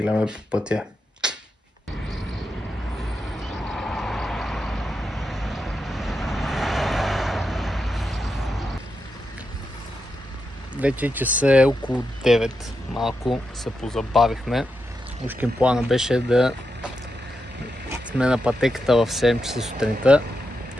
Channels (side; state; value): both; normal; correlation 0.86